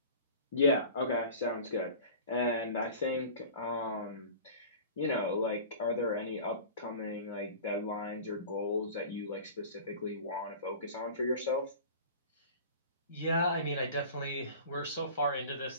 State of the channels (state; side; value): inverted; both; correlation -0.39